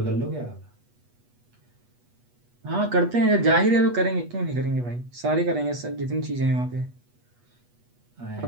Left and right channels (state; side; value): late; left; 8.2 ms